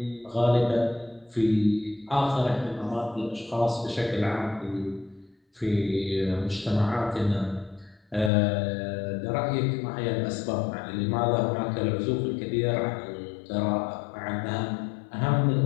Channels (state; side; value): drops out; right; at 8.3 s